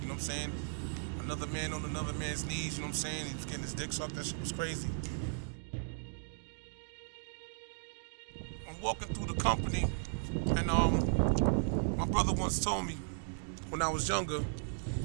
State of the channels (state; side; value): silent; left; digital silence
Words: know what I'm saying? Another man on another man's knees, you know what I'm saying? He was getting his dick sucked. That shit was crazy. I'm walking through the company and my brother once told me, when I was younger,